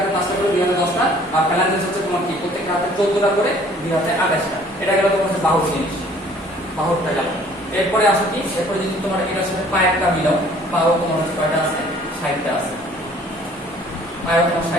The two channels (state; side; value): normal; both; correlation 0.55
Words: 5টা করে, 2 হাতে 10টা। আর ফ্যালাঙ্গিস হচ্ছে তোমার কি প্রত্যেকটা হাতে 14টা করে, 2 হাতে 28টা। এটা গেল তোমার হচ্ছে বাহুর জিনিস, বাহুরটা গেল। এরপরে আসো কি, এরপরে যদি তোমার এটার সাথে পায়েরটা মিলাও, পাও তোমার হচ্ছে কয়টা আছে? 60টা আছে। পায়েও তোমার